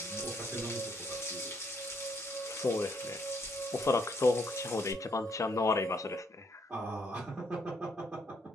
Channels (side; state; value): both; normal; correlation 0.71